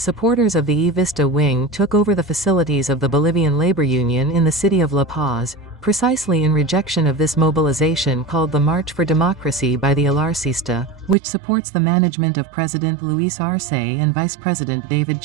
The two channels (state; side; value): drops out; left; at 11.2 s